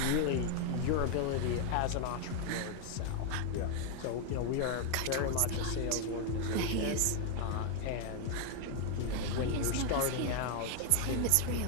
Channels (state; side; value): different; both; correlation 0.00